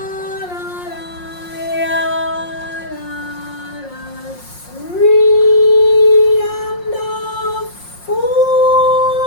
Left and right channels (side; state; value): right; late; 5.6 ms